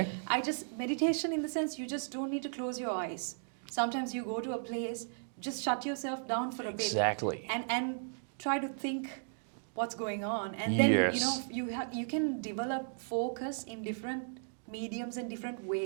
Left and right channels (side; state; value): left; silent; digital silence